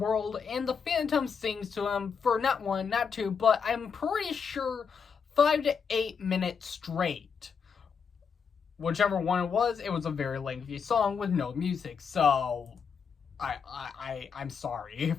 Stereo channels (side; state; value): right; quieter; 6.2 dB